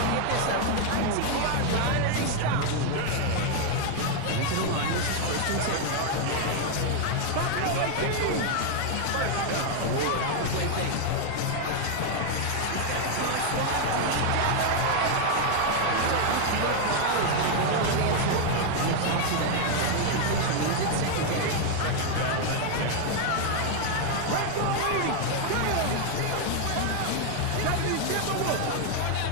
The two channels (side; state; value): both; different; correlation 0.01